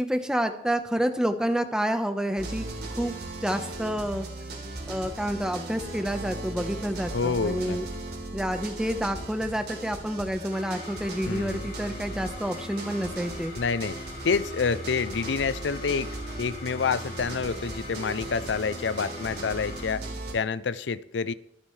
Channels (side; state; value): both; normal; correlation 0.49